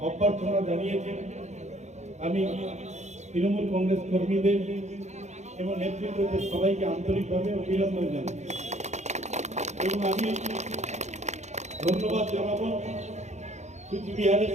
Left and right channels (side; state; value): left; late; 0.33 ms